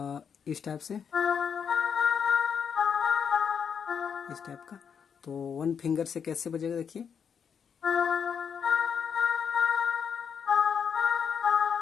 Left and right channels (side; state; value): right; quieter; 7.1 dB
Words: इस टाइप से, इस टाइप का। तो वन फिंगर से कैसे बजेगा देखिए।